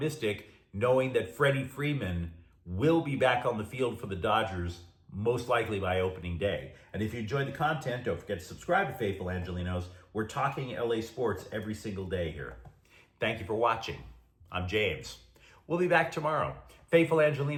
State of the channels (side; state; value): both; identical; correlation 1.00